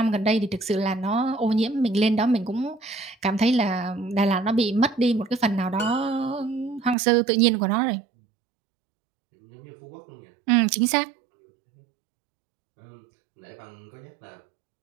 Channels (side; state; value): left; drops out; at 7.0 s